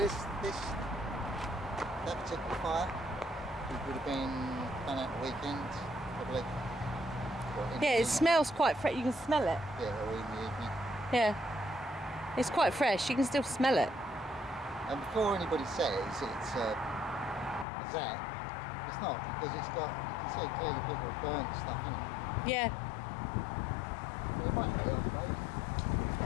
that particular fire, it would have been done at the weekend, probably. Yeah, it smells quite fresh. You can smell it. Yeah, or in the evening. Yeah. It's quite fresh. You can still smell it. And before anybody says it's a zap, it's not, because it's got, you can see clearly people have burnt stuff in it. Yeah. But it might be, I suppose.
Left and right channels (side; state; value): right; drops out; at 17.7 s